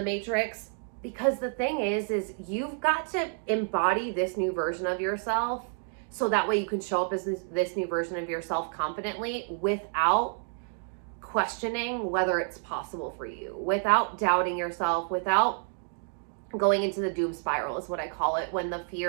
matrix. Because the thing is you've got to embody this new version of yourself so that way you can show up as this new version of yourself confidently without questioning whether it's possible for you, without doubting yourself, without going into the doom spiral is what I call it, when the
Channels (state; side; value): silent; left; 58 dB below the other